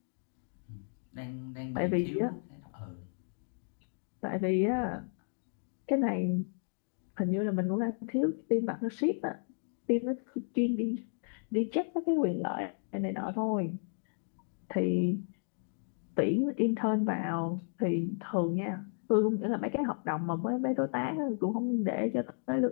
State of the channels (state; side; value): silent; right; digital silence